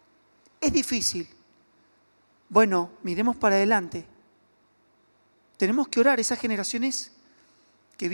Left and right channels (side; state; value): both; inverted; correlation -1.00